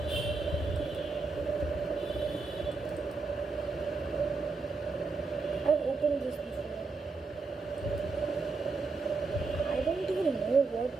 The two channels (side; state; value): left; quieter; 4.1 dB